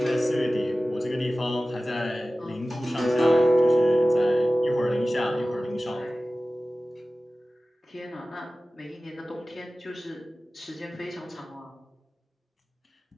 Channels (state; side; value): normal; both; correlation 0.96